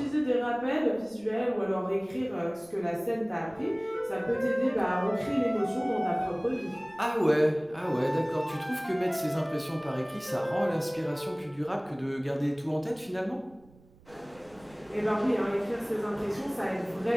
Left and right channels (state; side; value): noise; right; rumble, 27 dB below the sound